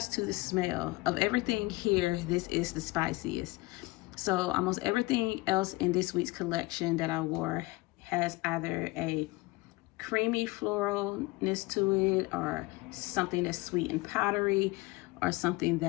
to the smell, of everything here, this is the spiciest. So almost everything else in this week's collection that I wore has either a creamy floralness to it, or something that's sweet and powdery, or something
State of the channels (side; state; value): right; quieter; 22.3 dB